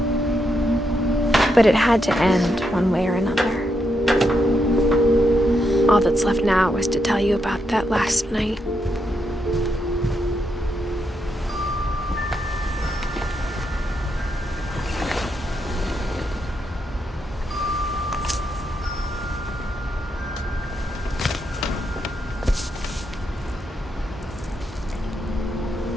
But it had to end one way or another. All that's left now is to tell you about that last night.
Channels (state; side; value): normal; both; correlation 0.81